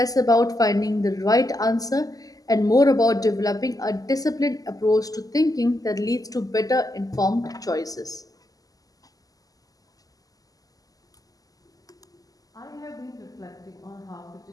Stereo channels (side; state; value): right; late; 0.17 ms